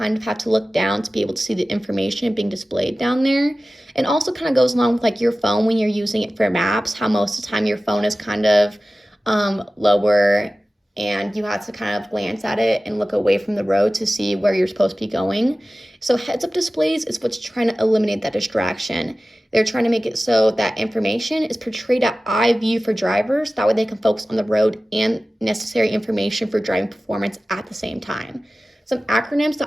of have to look down to be able to see the information being displayed down there. And also kind of goes along with like your phone when you're using it for maps, how most of the time your phone is kind of lower and you have to kind of glance at it and look away from the road to see where you're supposed to be going. So heads-up displays is what's trying to eliminate that distraction. They're trying to make it so that information is portrayed at eye view for drivers. That way they can focus on the road and necessary information for driving performance at the same time. Some acronyms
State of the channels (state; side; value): normal; both; correlation 0.96